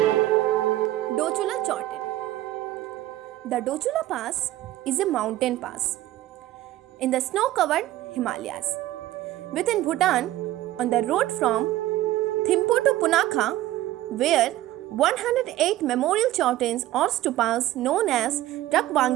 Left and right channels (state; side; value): quieter; left; 15.2 dB